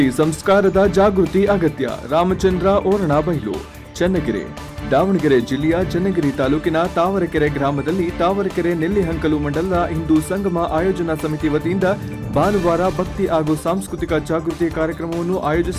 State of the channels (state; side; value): identical; both; correlation 1.00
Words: ಸಂಸ್ಕಾರದ ಜಾಗೃತಿ ಅಗತ್ಯ. ರಾಮಚಂದ್ರ ಓರಣಬೈಲು, ಚನ್ನಗಿರಿ. ದಾವಣಗೆರೆ ಜಿಲ್ಲೆಯ ಚನ್ನಗಿರಿ ತಾಲೂಕಿನ ತಾವರೆಕೆರೆ ಗ್ರಾಮದಲ್ಲಿ ತಾವರೆಕೆರೆ ನೆಲ್ಲಿಹಂಕಲು ಮಂಡಲದ ಹಿಂದೂ ಸಂಗಮ ಆಯೋಜನಾ ಸಮಿತಿ ವತಿಯಿಂದ ಭಾನುವಾರ ಭಕ್ತಿ ಹಾಗೂ ಸಾಂಸ್ಕೃತಿಕ ಜಾಗೃತಿ ಕಾರ್ಯಕ್ರಮವನ್ನು